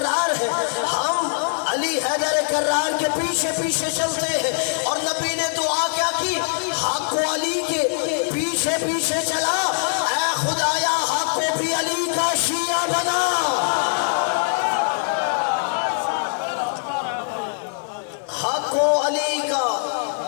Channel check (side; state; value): right; silent; 56 dB below the other